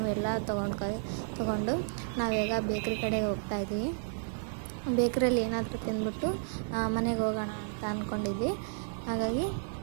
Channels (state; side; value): silent; left; 56 dB below the other